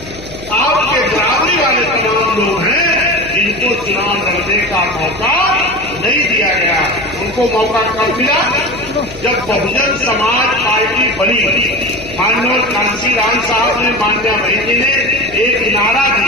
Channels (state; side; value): noise; left; hum, 17 dB below the sound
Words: आपके बराबरी वाले तमाम लोग हैं जिनको चुनाव लड़ने का मौका नहीं दिया गया। उनको मौका कब मिला? जब बहुजन समाज पार्टी बनी। माननीय कांशीराम साहब ने, मान्या बहन जी ने एक नारा